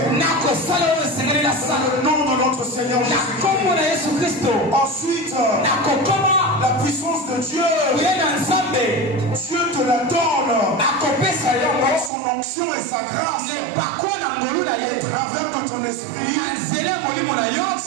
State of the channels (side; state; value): left; drops out; at 12.1 s